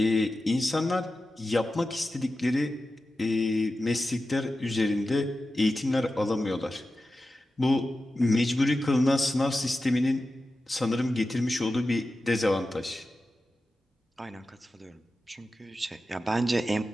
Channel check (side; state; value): both; normal; correlation 0.93